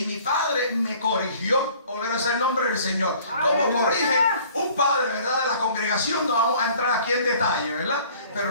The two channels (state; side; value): inverted; both; correlation -0.53